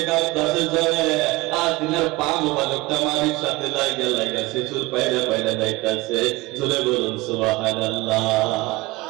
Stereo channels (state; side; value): quieter; left; 21.5 dB